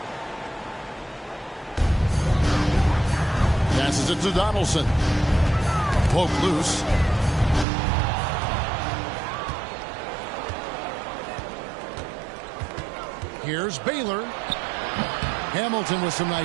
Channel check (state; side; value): drops out; left; at 7.7 s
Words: Passes it to Donaldson. Poke loose. Here's Baylor. Hamilton with some